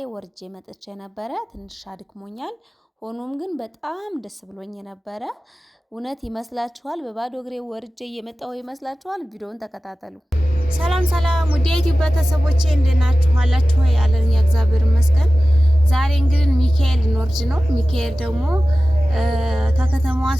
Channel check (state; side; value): normal; both; correlation 0.95